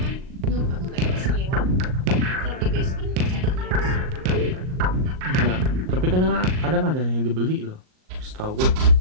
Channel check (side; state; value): left; late; 38 ms